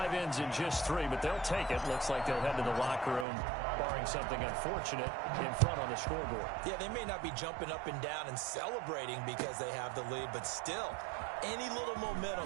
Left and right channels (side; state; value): left; drops out; at 3.2 s